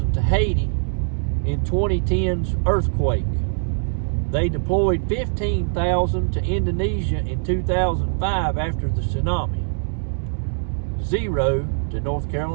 to Haiti in 2010's earthquake. They deployed 15,000 to Indonesia in 2005 after the tsunami. 0 to North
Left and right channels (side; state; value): left; silent; 64 dB below the other